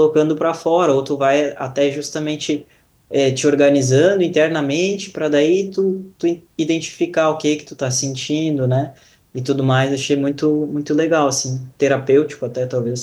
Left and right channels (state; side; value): identical; both; correlation 1.00